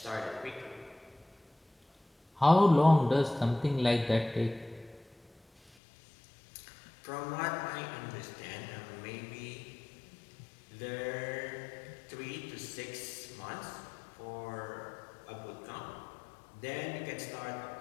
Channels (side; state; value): right; drops out; at 5.7 s